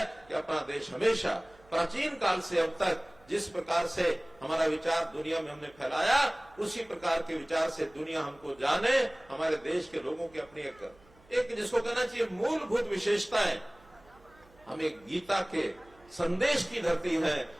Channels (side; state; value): right; noise; hum, 28 dB below the sound